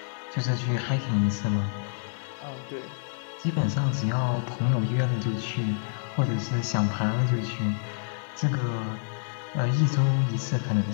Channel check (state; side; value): silent; right; digital silence